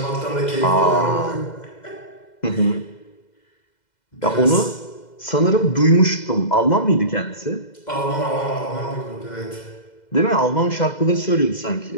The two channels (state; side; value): late; right; 2.0 ms